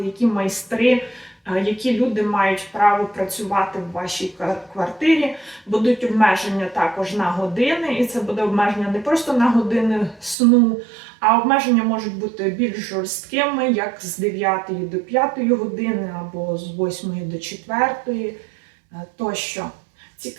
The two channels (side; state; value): left; drops out; at 10.4 s